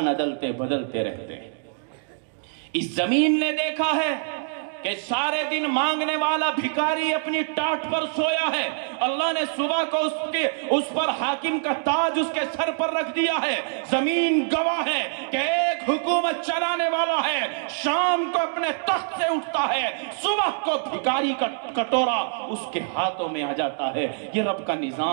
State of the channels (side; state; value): left; silent; digital silence